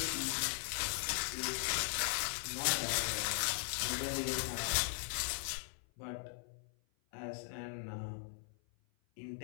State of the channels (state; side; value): silent; right; 52 dB below the other